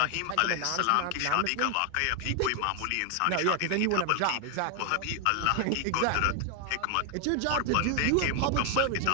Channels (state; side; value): different; both; correlation 0.00